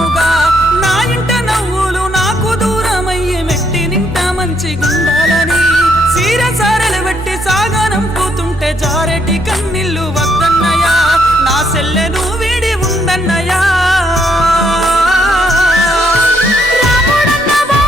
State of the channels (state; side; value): normal; both; correlation 0.72